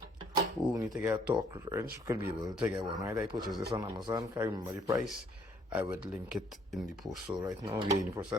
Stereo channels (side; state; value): both; normal; correlation 0.63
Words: who need to get a torque wrench could be able to get one. Right, I purchased this on Amazon. Can't remember the price. I would link it in the post. So right now we're in the